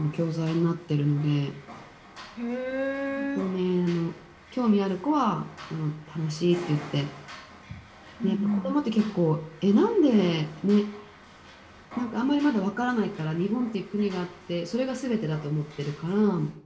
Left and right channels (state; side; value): identical; both; correlation 1.00